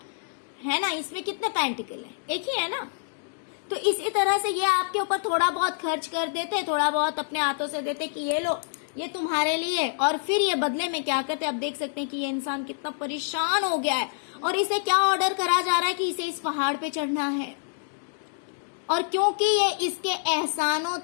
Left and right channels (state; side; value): silent; right; digital silence